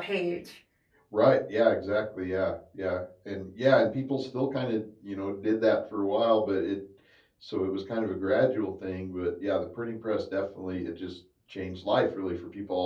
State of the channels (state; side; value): identical; both; correlation 1.00